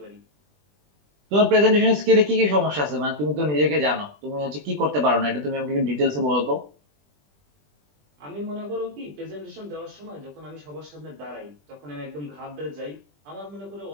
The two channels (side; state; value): left; late; 20 ms